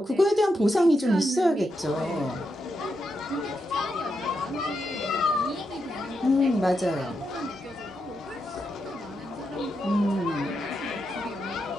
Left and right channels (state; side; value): normal; both; correlation 0.84